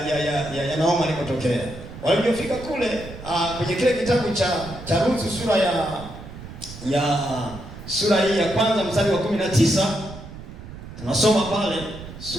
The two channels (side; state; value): right; noise; rumble, 14 dB below the sound